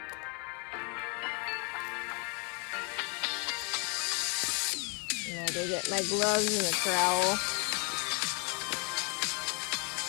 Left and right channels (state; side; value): quieter; right; 35.3 dB